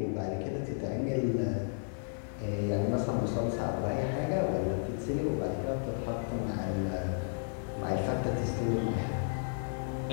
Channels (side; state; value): right; silent; digital silence